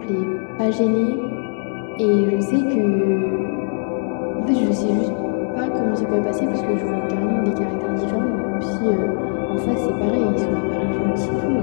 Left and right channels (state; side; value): silent; right; digital silence